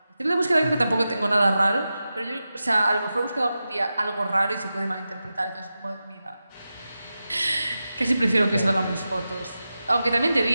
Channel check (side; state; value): both; inverted; correlation -0.92